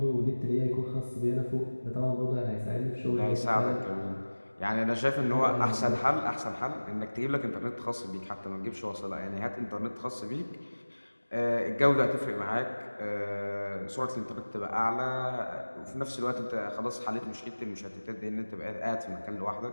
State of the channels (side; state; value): both; inverted; correlation -1.00